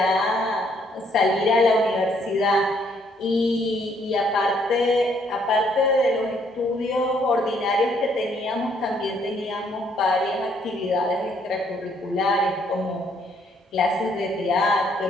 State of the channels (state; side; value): normal; both; correlation 0.68